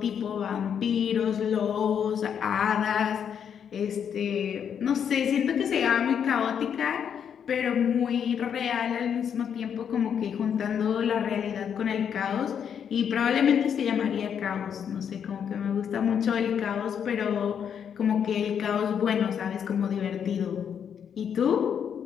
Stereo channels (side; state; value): right; quieter; 8.0 dB